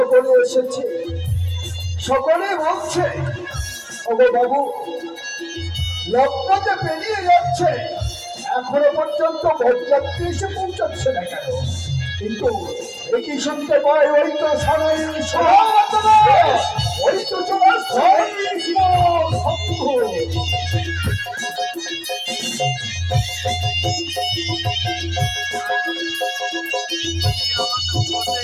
এসেছে সকলে বলছে ওগো বাবু লগ্ন যে পেরিয়ে যাচ্ছে এখনো পর্যন্ত বরযাত্রী এসে পৌঁছাচ্ছে না কেন কিন্তু একই শুনতে পাই ওই তো সারাই ওই তো তোমার শম্ভু।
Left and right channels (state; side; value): identical; both; correlation 1.00